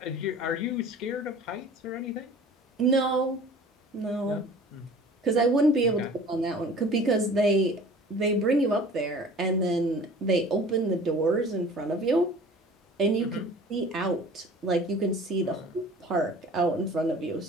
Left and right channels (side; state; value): both; normal; correlation 0.45